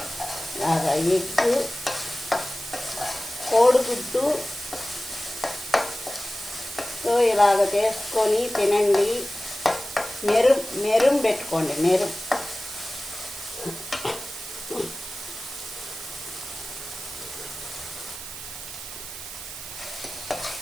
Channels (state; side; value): noise; right; hiss, 10 dB below the sound